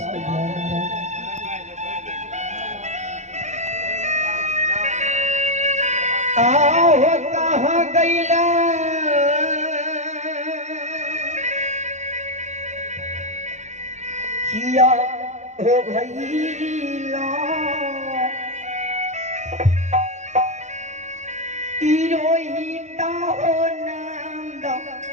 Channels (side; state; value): left; late; 0.34 ms